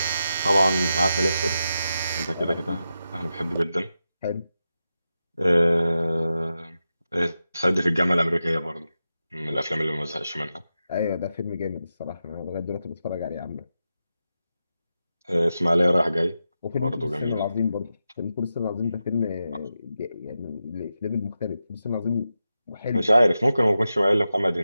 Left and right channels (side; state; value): both; inverted; correlation -0.89